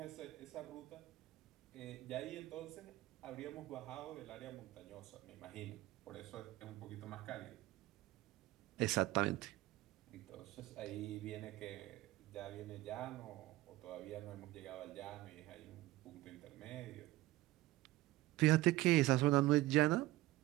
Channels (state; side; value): quieter; left; 17.6 dB